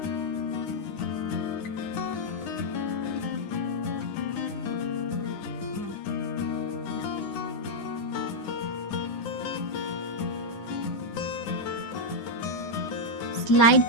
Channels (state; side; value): late; right; 9.8 ms